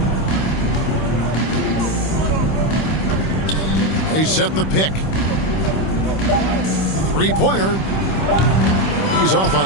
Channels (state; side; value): late; right; 26 ms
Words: They set the pick. Three-pointer. He's off